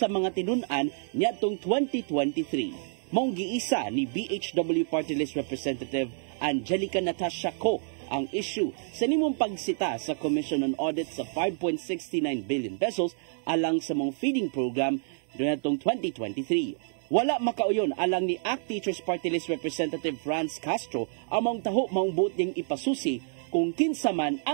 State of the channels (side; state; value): left; silent; digital silence